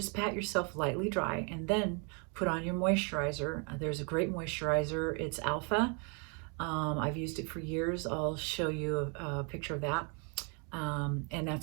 pat yourself lightly dry, and then put on your moisturizer. There's a great moisturizer. It's Alpha. I've used it for years. I'll show you a picture of that. And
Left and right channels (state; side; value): quieter; left; 35.1 dB